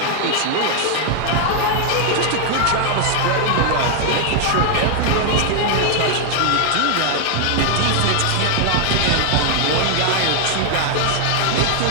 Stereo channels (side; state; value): both; different; correlation 0.00